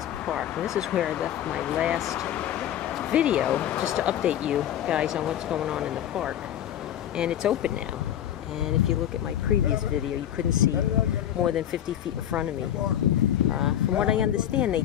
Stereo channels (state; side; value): quieter; right; 10.9 dB